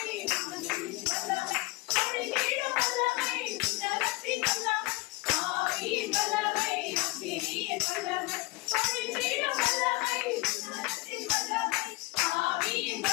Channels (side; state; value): right; quieter; 22.1 dB